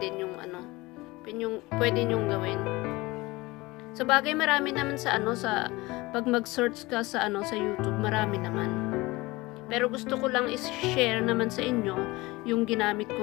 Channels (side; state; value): right; quieter; 21.5 dB